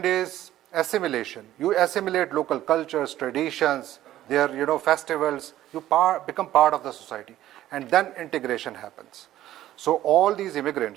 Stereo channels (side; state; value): left; quieter; 13.6 dB